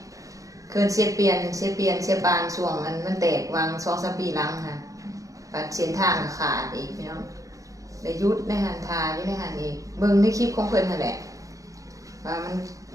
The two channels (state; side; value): late; left; 0.16 ms